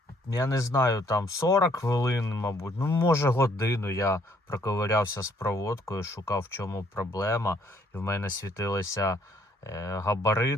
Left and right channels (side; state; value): both; normal; correlation 0.65